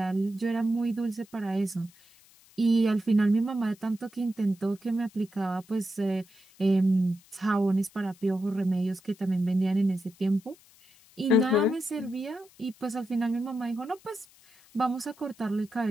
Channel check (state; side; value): noise; left; hiss, 27 dB below the sound